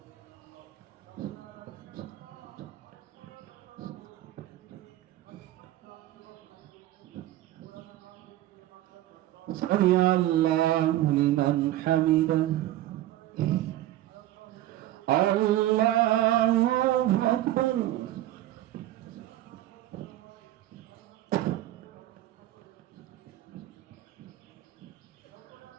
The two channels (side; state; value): left; quieter; 14.4 dB